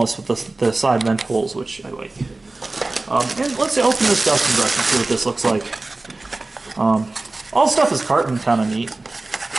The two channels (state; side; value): quieter; left; 3.1 dB